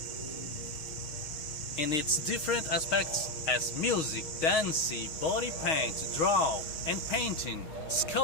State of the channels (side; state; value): right; late; 6.4 ms